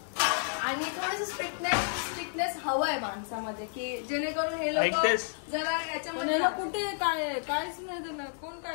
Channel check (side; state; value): right; silent; digital silence